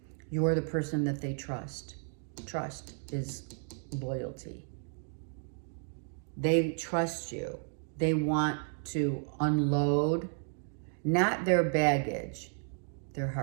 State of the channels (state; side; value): silent; left; 56 dB below the other